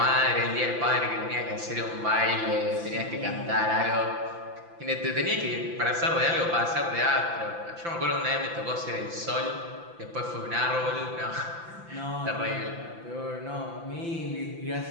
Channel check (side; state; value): left; late; 5.9 ms